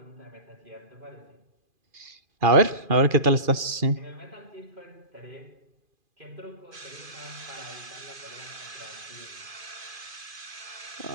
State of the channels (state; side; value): late; left; 2.5 ms